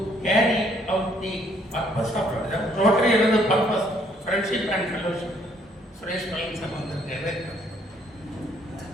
carry out the purpose of Rotary. is the purpose, friendship and fellowship. Suresh Palani sir வந்திருக்காரு.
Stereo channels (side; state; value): both; normal; correlation 0.66